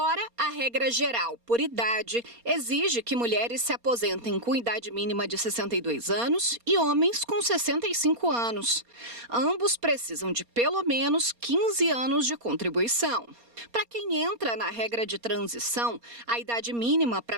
a regra geral por idade exige que mulheres se aposentem com idade mínima de 62 anos e homens com 65 anos. Ambos precisam de pelo menos 15 anos de contribuição. Para quem entra na regra de transição, a idade mínima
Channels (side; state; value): left; late; 4.2 ms